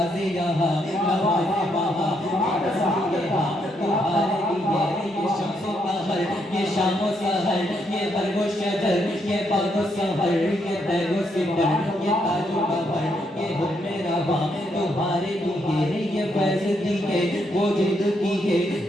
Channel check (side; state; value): both; normal; correlation 0.76